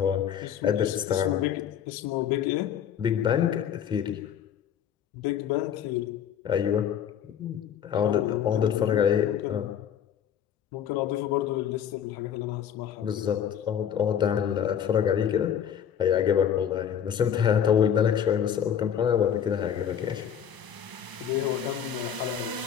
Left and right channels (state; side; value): quieter; right; 8.9 dB